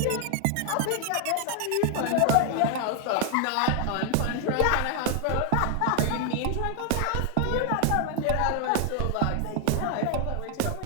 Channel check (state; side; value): different; both; correlation 0.00